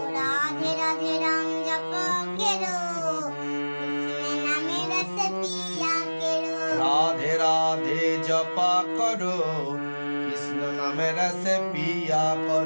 রাধে রাধে রাম জপা কেরো কৃষ্ণ নামে রস পিয়া কেরো রাধে রাধে জপা করো কৃষ্ণ নামে রস পিয়া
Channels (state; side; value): inverted; both; correlation -1.00